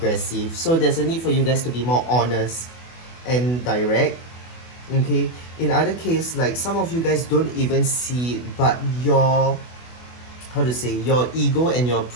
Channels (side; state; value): right; late; 24 ms